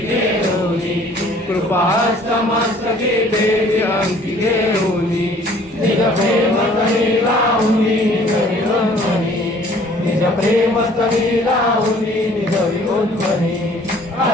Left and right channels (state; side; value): normal; both; correlation 0.55